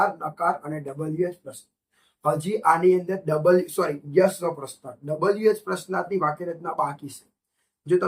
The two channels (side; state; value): both; identical; correlation 1.00